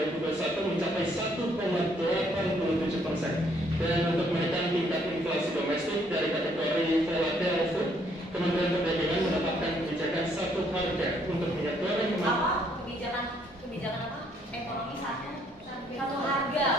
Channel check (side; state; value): both; normal; correlation 0.68